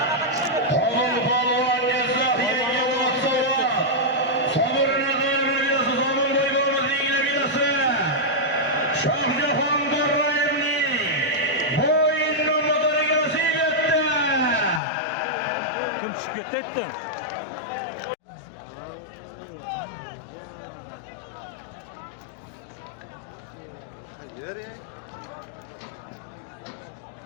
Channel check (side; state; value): right; drops out; at 14.8 s